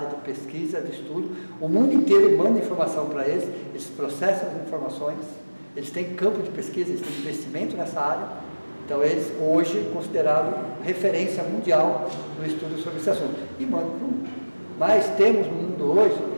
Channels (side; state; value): both; inverted; correlation -1.00